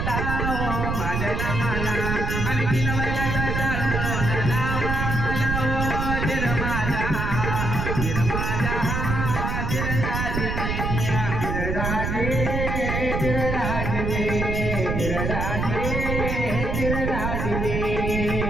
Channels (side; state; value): right; noise; rumble, 1 dB below the sound